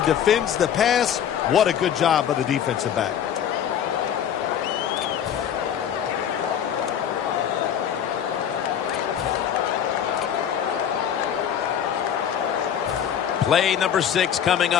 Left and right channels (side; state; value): right; quieter; 9.1 dB